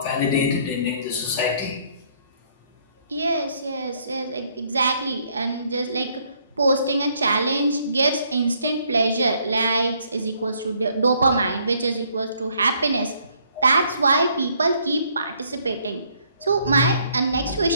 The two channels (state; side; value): inverted; both; correlation -0.67